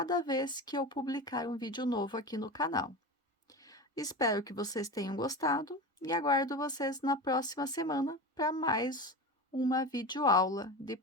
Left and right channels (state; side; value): normal; both; correlation 0.26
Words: vez que eu publicar um vídeo novo aqui no canal. Espero que vocês tenham gostado e aguardo vocês na próxima semana para mais uma videoaula de